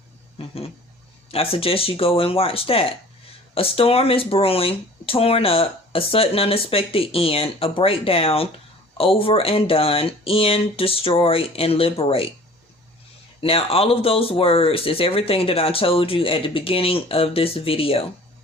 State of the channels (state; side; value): normal; both; correlation 0.47